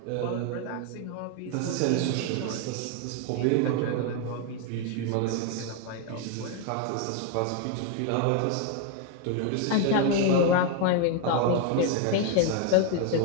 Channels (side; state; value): both; different; correlation 0.01